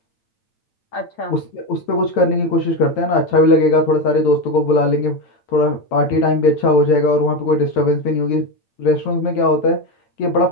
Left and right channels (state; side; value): late; right; 8.9 ms